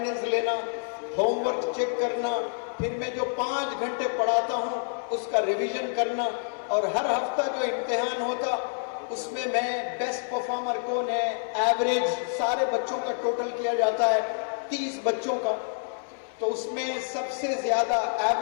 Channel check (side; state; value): right; silent; 60 dB below the other